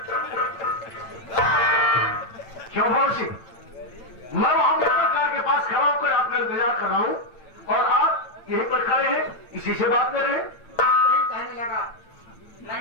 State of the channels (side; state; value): right; late; 8.9 ms